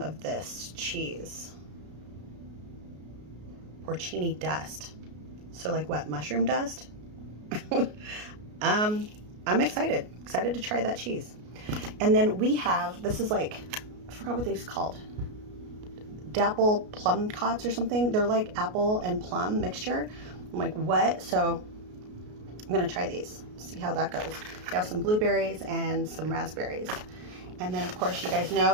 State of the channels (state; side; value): late; left; 33 ms